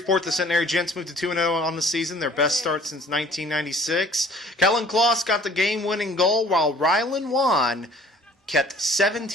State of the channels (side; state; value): both; normal; correlation 0.52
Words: the Centenary Gents moved to 2-0 on the season, their best start since 1996. Kellen Kloss got the game-winning goal, while Rylan Wan kept